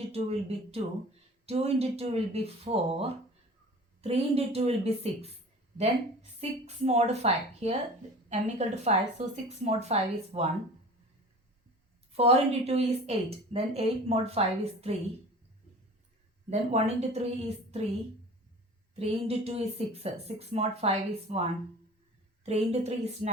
2 will be 2. 2 into 2 will be 4, 3 into 2 will be 6, then 6 mod 5, here m equal to 5, so 6 mod 5 is 1, 4 into 2 is 8, then 8 mod 5 is 3, Then 1 into 3 is 3. 3 into 2 is 6. 6 mod 5 is 1. 3 into 3 is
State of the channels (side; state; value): both; normal; correlation 0.40